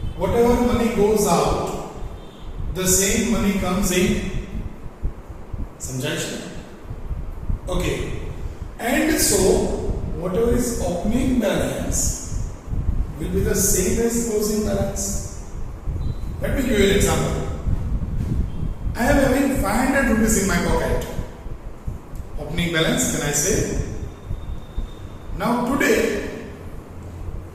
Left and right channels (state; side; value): identical; both; correlation 1.00